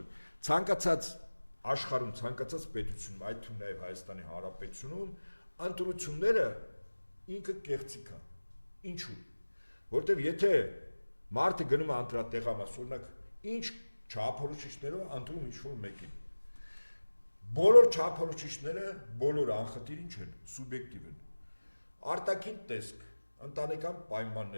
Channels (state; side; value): inverted; both; correlation -1.00